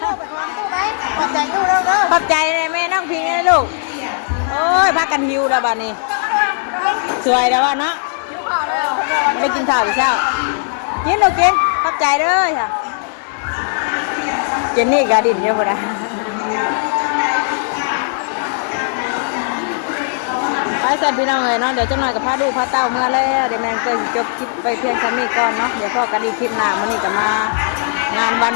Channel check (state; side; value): silent; right; digital silence